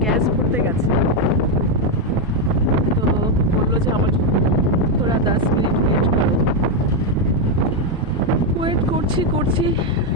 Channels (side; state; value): both; normal; correlation 0.04